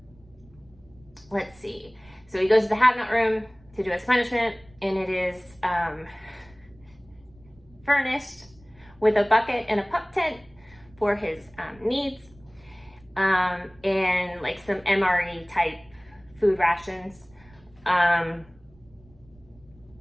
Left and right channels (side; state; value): right; noise; rumble, 27 dB below the sound